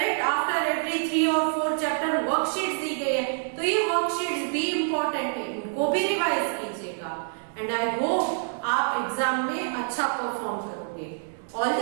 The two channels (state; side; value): silent; left; digital silence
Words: आफ्टर एवरी 3 और 4 चैप्टर वर्कशीट्स दी गई है, तो ये वर्कशीट्स भी इंपॉर्टेंट है, इनको भी रिवाइज कीजिएगा। एंड आई होप आप एग्जाम में अच्छा परफॉर्म करोगे। All